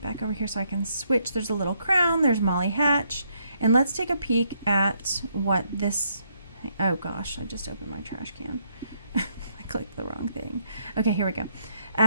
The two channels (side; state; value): both; inverted; correlation -0.73